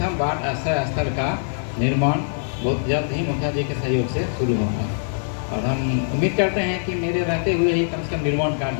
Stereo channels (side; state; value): right; silent; digital silence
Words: बाढ़ आश्रय स्थल का निर्माण बहुत जल्द ही मुखिया जी के सहयोग से शुरू होगा और हम उम्मीद करते हैं कि मेरे रहते हुए ही कम से कम निर्माण